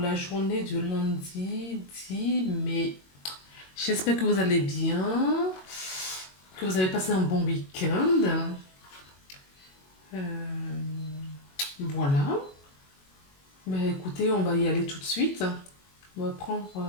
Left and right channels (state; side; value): late; right; 21 ms